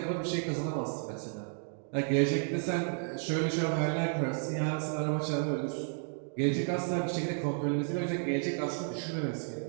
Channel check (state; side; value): silent; left; 56 dB below the other